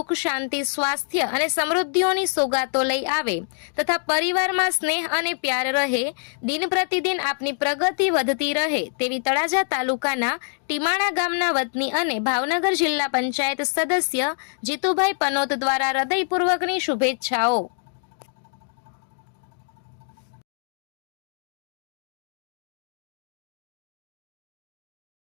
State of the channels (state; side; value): silent; right; digital silence